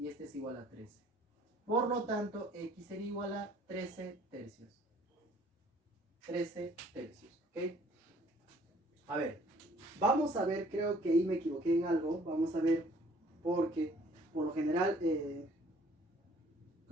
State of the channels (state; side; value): normal; both; correlation 0.58